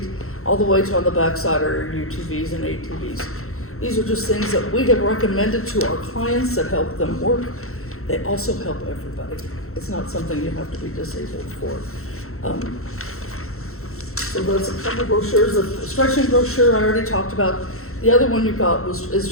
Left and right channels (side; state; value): right; late; 0.63 ms